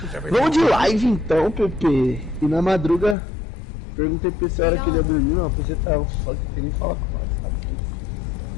Is everything Vamos de all right? live então, Pepe. E na madruga, perguntei pra esse hora que ele ia dormir, não, você tava só que ele fala com nós, sabe?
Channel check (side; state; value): right; drops out; at 3.2 s